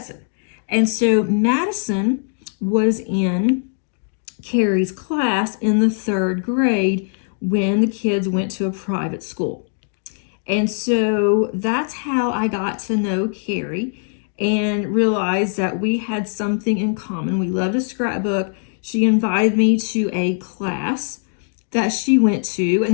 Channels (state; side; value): silent; right; digital silence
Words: And so Madison was in Carrie's class in the 3rd grade when the kids went to a private school. And so that's how I got to know Carrie and realized that we had something in common. We loved a scrapbook. She invited me to a class that she went to,